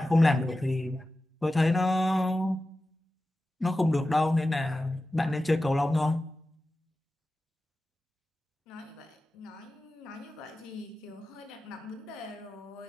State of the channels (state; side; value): normal; both; correlation 0.94